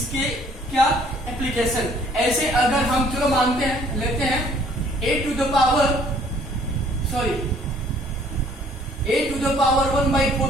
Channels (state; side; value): normal; both; correlation 0.59